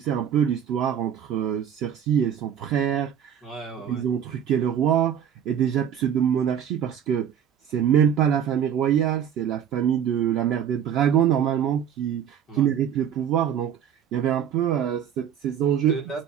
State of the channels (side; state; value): left; quieter; 9.0 dB